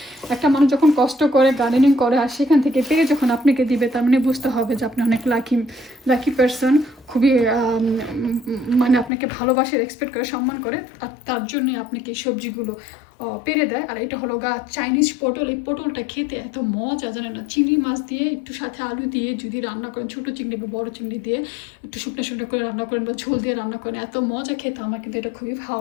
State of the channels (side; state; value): right; drops out; at 9.1 s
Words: একটা মানুষ যখন কষ্ট করে গার্ডেনিং করে আর সেখান থেকে পেরে যখন আপনাকে দিবে, তার মানে বুঝতে হবে যে আপনি অনেক লাকি পারসন। খুবই মানে আপনাকে ভালোবাসে, এক্সপেক্ট করে, সম্মান করে, আর তার জন্যে আপনাকে এই সবজিগুলো পেরে দেয়। আর এটা হলো চাইনিজ পটল। এই পটলটা খেতে এত মজা জানে না। চিংড়ি মাছ দিয়ে একটু সাথে আলু দিয়ে যদি রান্না করেন, ছোটো চিংড়ি বা বড়ো চিংড়ি দিয়ে একটু শুকনো করে রান্না করেন বা ঝোল দিয়ে রান্না করেন, এত মজা খেতে। আমার কিন্তু এটা খুবই